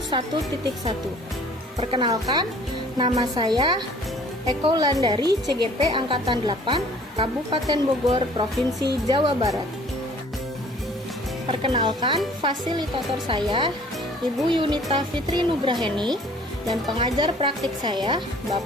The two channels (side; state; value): both; normal; correlation 0.53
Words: Perkenalkan, nama saya Eko Landari CGP Angkatan 8 Kabupaten Bogor, Provinsi Jawa Barat. Perkenalkan, fasilitator saya Ibu Yunita Fitri Nugraheni dan pengajar praktik saya